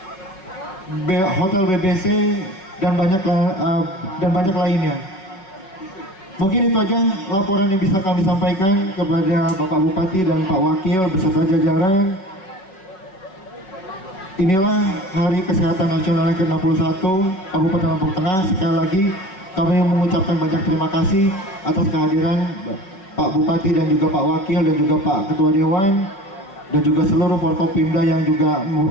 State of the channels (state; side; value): late; right; 5.4 ms